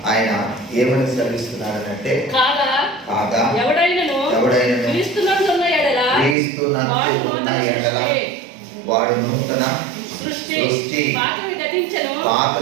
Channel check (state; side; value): drops out; left; at 6.4 s